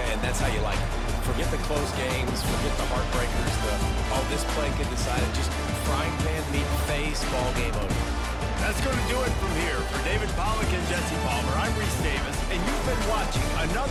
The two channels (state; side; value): identical; both; correlation 1.00